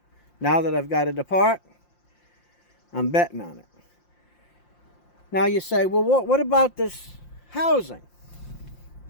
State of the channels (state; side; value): late; right; 5.7 ms